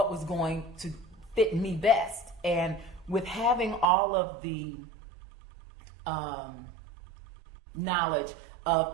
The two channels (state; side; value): drops out; left; at 3.9 s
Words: was going to fit me best. And with having all of the knowledge